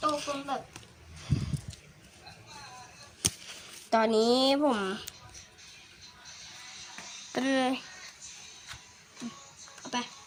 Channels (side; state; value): both; identical; correlation 1.00